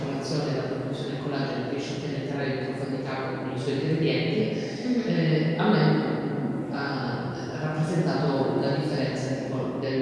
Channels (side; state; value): both; identical; correlation 1.00